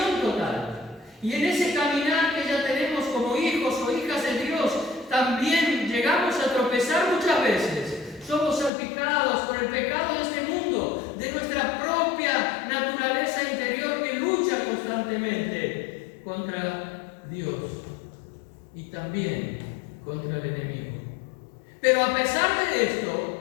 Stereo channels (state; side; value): drops out; right; at 8.7 s